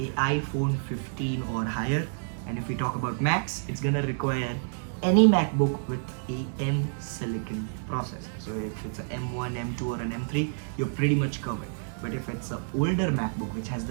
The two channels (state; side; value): silent; left; digital silence